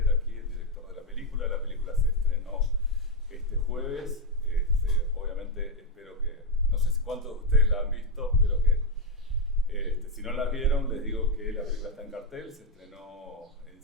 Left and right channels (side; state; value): both; normal; correlation 0.04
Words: aquí, el director de la película. La película se estrenó este jueves. Obviamente espero que, no sé cuántos de ustedes la han visto, espero que si no la vieron, les digo que la película está en cartel. Se estrenó en